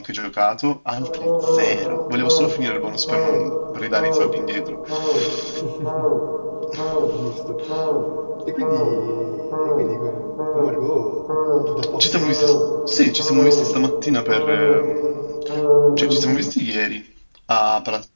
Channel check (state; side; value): inverted; both; correlation -1.00